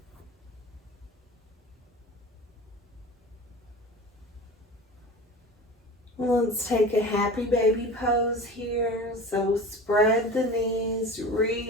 Let's take a happy baby pose here. So spread the knees,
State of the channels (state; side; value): normal; both; correlation 0.35